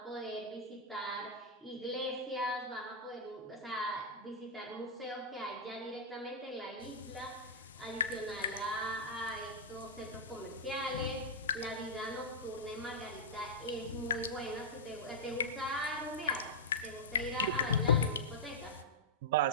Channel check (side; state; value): both; normal; correlation -0.07